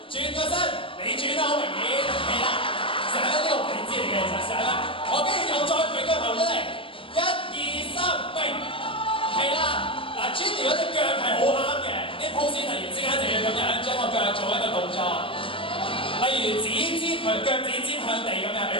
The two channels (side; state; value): right; late; 0.25 ms